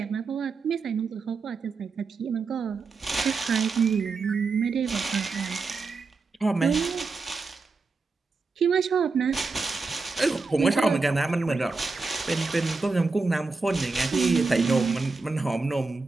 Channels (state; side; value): quieter; left; 4.2 dB